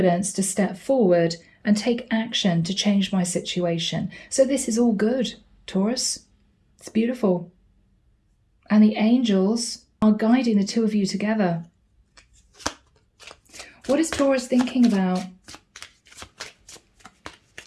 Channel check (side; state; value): both; identical; correlation 1.00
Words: to step forward and take action to change my situation. So this is all good, Taurus. It's beautiful. And the angels are guiding the two of you together. What is Taurus thinking about?